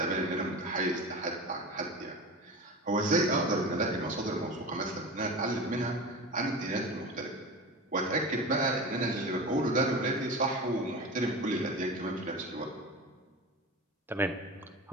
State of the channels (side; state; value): both; normal; correlation 0.30